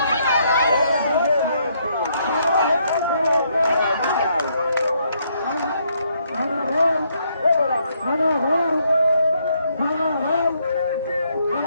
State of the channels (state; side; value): inverted; both; correlation -0.72